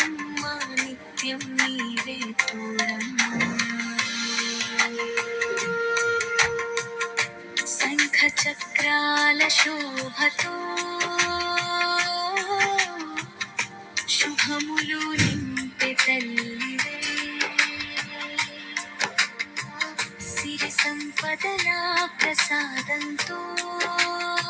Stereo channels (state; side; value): identical; both; correlation 1.00